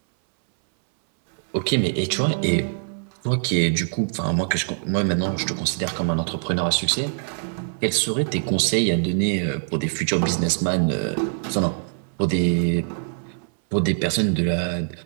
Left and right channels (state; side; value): silent; left; 61 dB below the other